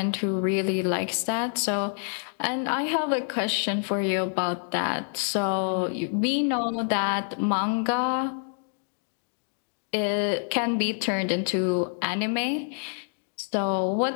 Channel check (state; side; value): silent; right; digital silence